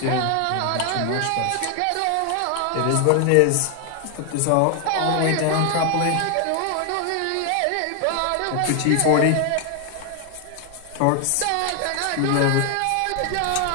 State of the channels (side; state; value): both; different; correlation 0.00